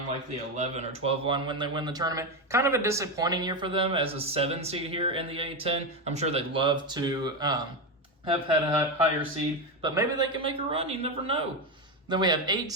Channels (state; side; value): normal; both; correlation 0.12